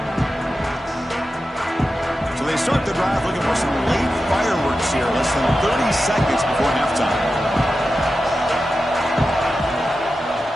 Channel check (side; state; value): both; normal; correlation 0.92